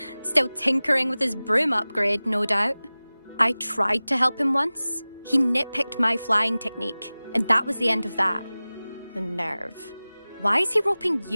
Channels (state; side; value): inverted; both; correlation -0.98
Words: Still tinkering with his broom upgrade, no doubt. I tried to help him once. He nitpicked my flying technique, and that was the end of that. The nerve. Why is he roping